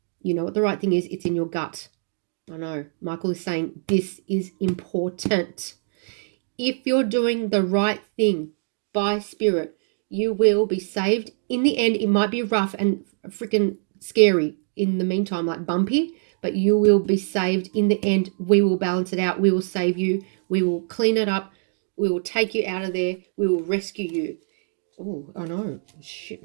You know what the right thing is? It's in your gut. I know. Michael is saying this is important. If you're doing the right thing by spirit, you will be saved. In the end, it might be rough and freaking scary in the meantime, like bumpy, but you will be saved. In the end, we will balance it out. We will save you. We will clean it up. We will take you out of there. We will rescue you. Oh, I know. Shit,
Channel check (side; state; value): left; silent; digital silence